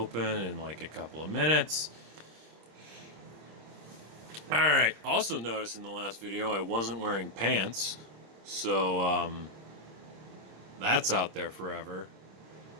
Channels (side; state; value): left; late; 26 ms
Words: in like a couple of minutes. Alright, also noticed in the last video I wasn't wearing pants, so that's out there forever.